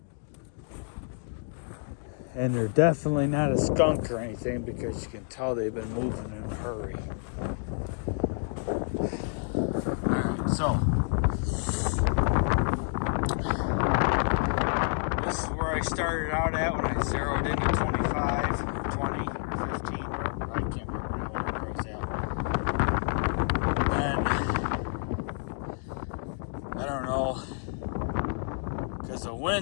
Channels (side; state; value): right; silent; 55 dB below the other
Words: And they're definitely not a skunk or anything, because you can tell they've been moving in a hurry. Alright, so this is where I started out at when I zeroed into 25, or 20, or 15, or I can't remember now where I was at. And I don't know, because the